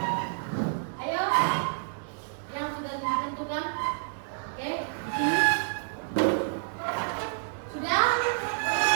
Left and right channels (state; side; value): silent; left; digital silence